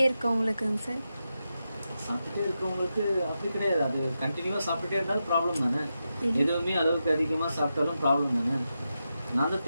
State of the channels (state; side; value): inverted; both; correlation -0.88